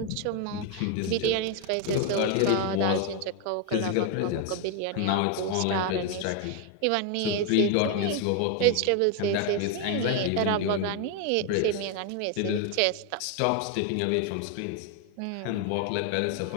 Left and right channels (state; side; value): different; both; correlation 0.01